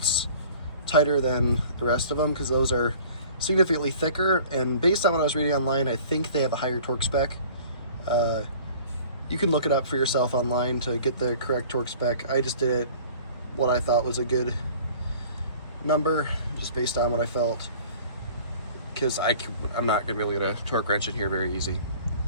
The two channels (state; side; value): inverted; both; correlation -0.47